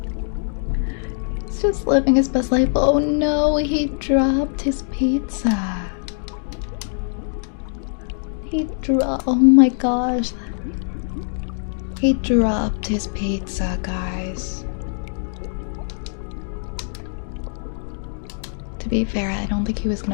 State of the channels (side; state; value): right; silent; digital silence